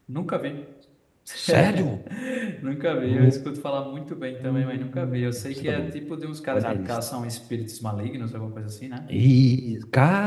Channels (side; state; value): both; identical; correlation 1.00